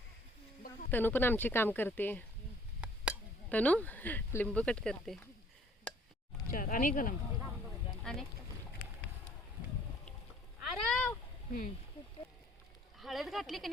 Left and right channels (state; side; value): normal; both; correlation 0.59